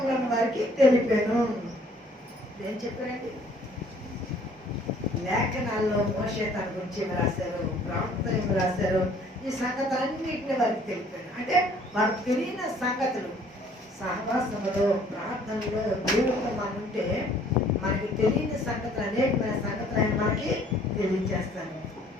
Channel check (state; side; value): normal; both; correlation 0.58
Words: వారికి తెలిపాను. ఏం చెప్పారండి? లేఖనాల్లో మోషే తన గురించి ఏమి రాశారు, ప్రవక్తలు ఏమి రాశారు, ఈ సంగతులన్నింటినీ వారికి తెలిపాను. అంటే వారికి తెలియని సంగతులు సహవాసంలో, ప్రార్థనలో, దేవుడితో మనం ఉంటే మనకి తెలియని సంగతులు, అనేకమైన సంగతులు ఆయన మనకి తెలియజేస్తాను.